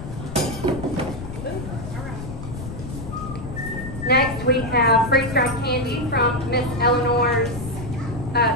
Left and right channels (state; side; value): noise; left; rumble, 9 dB below the sound